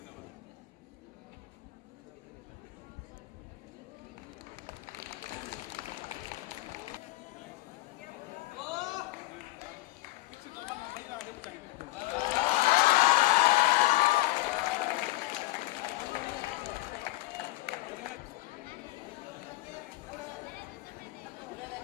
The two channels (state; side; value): quieter; right; 19.6 dB